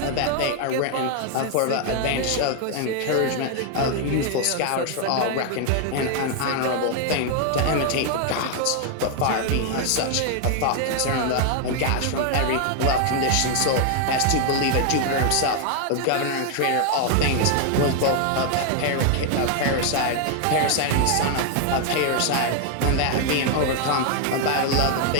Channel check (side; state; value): both; different; correlation 0.00